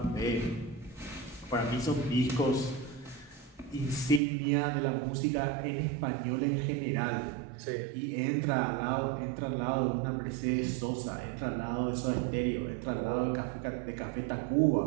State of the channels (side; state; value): left; drops out; at 4.2 s